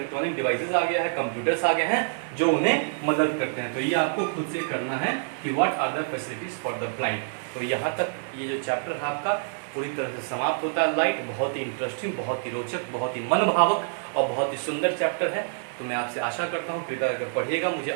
डिवाइसेस आ गया है, कंप्यूटर्स आ गए हैं जो उन्हें मदद करते हैं। तो ये आपको खुद से करना है कि what are the facilities for the blind. तो यहाँ तक ये जो चैप्टर है आपका पूरी तरह से समाप्त होता है। लाइट बहुत ही इंटरेस्टिंग, बहुत ही रोचक, बहुत ही मनभावक और बहुत ही सुंदर चैप्टर है। तो मैं आपसे आशा करता हूँ कृपया अगर पढ़िएगा। मुझे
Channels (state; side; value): silent; left; 60 dB below the other